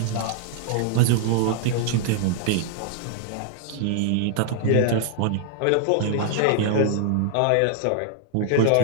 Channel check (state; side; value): different; both; correlation 0.00